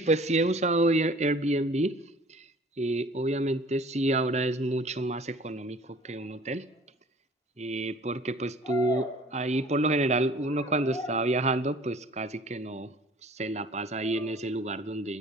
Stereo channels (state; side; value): normal; both; correlation 0.50